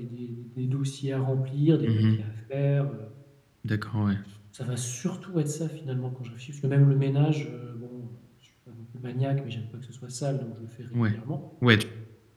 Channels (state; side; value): identical; both; correlation 1.00